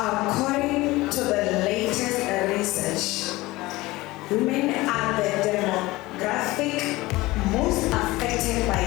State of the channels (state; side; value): quieter; right; 19.9 dB